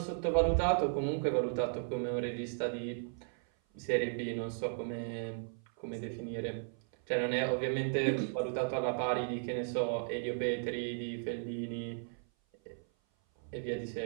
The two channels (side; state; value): left; silent; 54 dB below the other